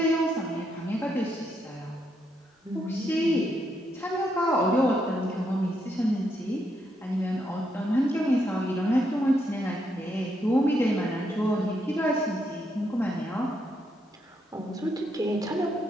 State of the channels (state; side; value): normal; both; correlation 0.78